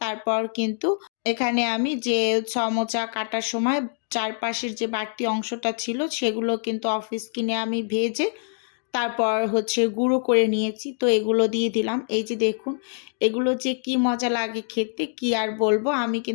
তারপর কিন্তু এখানে আমি যে সমোচা কাটার সময় চারপাশের যে বাড়তি অংশটা ছিল সেগুলো কিন্তু অফ স্ক্রিনে আমি ভেজে তারপর হচ্ছে গুঁড়ো করে নিয়েছি, তো এগুলো দিয়ে দিলাম। এই যে দেখুন এগুলো যে কি মজা লাগে খেতে, কি আর বলবো। আমি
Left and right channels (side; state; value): right; silent; digital silence